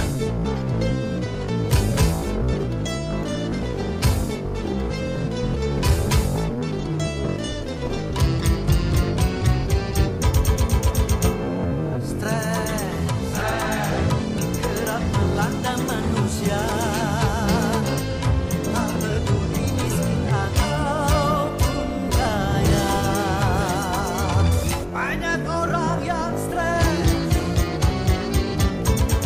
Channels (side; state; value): both; identical; correlation 1.00